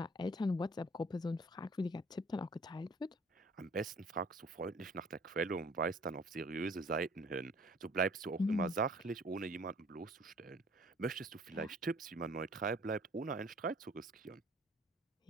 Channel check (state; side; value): normal; both; correlation 0.54